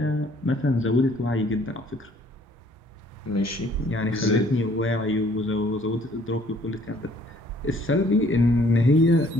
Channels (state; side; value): normal; both; correlation 0.60